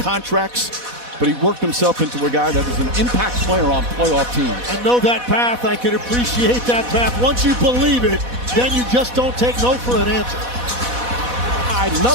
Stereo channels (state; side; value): late; left; 4.1 ms